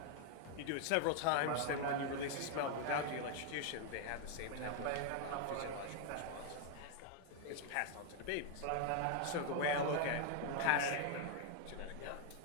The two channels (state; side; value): different; both; correlation 0.00